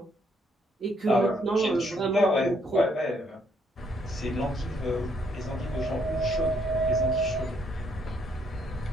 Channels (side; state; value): both; normal; correlation 0.71